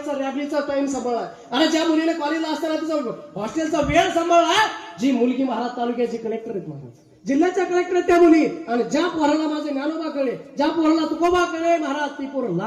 रॅबलीचा टाइम सांभाळला, आणि ज्या मुलीने कॉलेजला असताना तिचा हॉस्टेलचा वेळ सांभाळला, जी मुलगी महाराज तालुक्याची कलेक्टर आहेत महाराज, जिल्ह्याच्या कलेक्टर आहेत त्या मुली. आणि ज्या पोराला माझे ज्ञानोबा कळे, ज्या पोराला तुकोबा कळे महाराज, ती पोरं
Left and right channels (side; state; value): both; identical; correlation 1.00